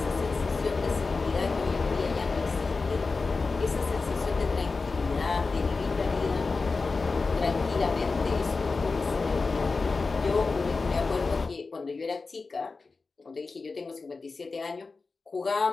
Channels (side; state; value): right; quieter; 4.1 dB